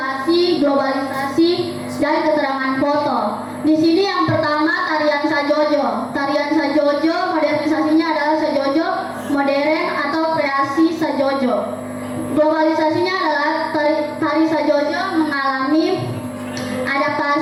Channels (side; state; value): both; identical; correlation 1.00